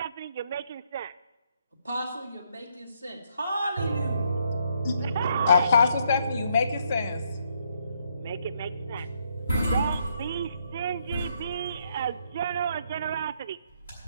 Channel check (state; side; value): inverted; both; correlation -0.73